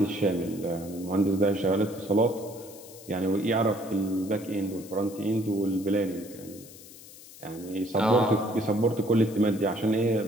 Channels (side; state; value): left; noise; hiss, 18 dB below the sound